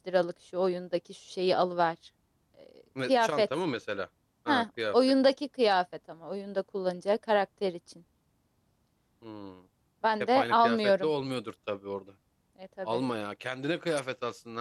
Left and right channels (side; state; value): both; identical; correlation 1.00